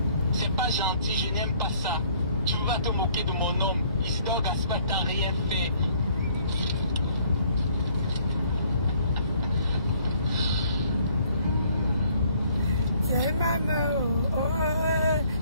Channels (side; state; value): both; inverted; correlation -0.61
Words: C'est pas gentil, je n'aime pas ça. Tu vas te moquer de mon homme. Isidore Gaspard, t'as rien fait. Tiens maman, oh, oh,